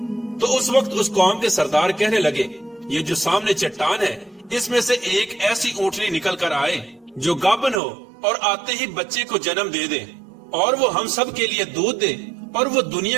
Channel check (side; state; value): left; drops out; at 7.8 s